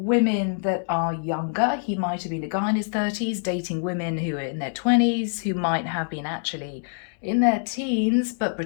that are younger. He might have been a guy in his 30s dating women who are in their 20s, who might have been actually in their teens but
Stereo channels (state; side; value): silent; right; digital silence